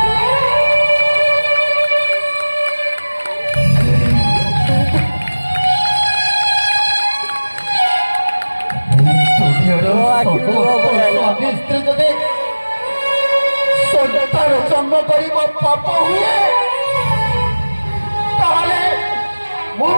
ସ୍ୱାମୀ ସ୍ତ୍ରୀ ଯଦି ସନ୍ତାନ ଜନ୍ମ କରିବ ପାପ ହୁଏ, ତାହେଲେ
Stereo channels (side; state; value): both; inverted; correlation -1.00